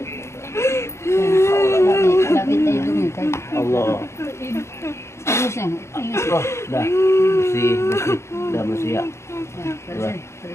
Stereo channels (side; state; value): right; late; 0.13 ms